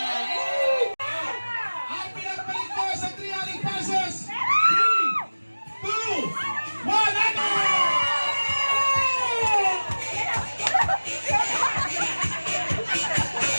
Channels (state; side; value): inverted; both; correlation -1.00